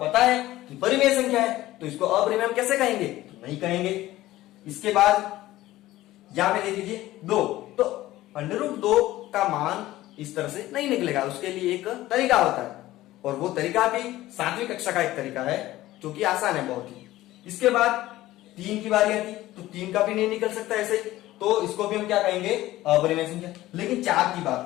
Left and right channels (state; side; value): quieter; right; 16.1 dB